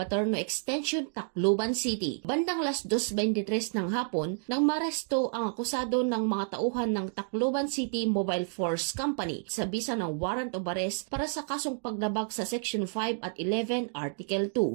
Extension, Tacloban City. Bandang alas 2:23 ng hapon nang maresto ang akusado ng mga tauhan ng Tacloban City Mobile Force Company sa bisa ng warrant of arrest para sa kasong paglabag sa Section 5 at 11 Article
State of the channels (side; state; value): left; silent; 56 dB below the other